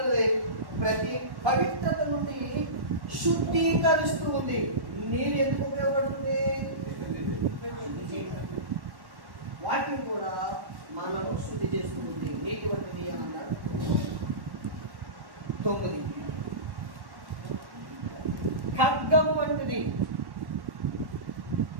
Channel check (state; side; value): late; left; 1.1 ms